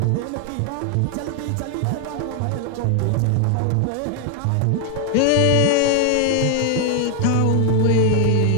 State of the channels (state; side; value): different; both; correlation 0.01